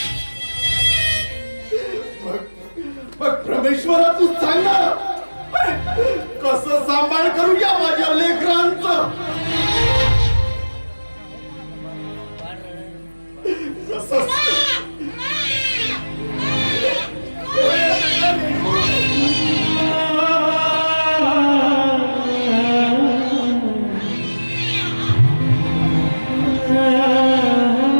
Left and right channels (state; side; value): inverted; both; correlation -1.00